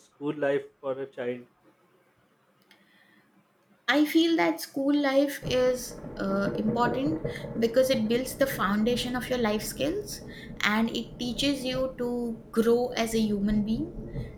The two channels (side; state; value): both; identical; correlation 1.00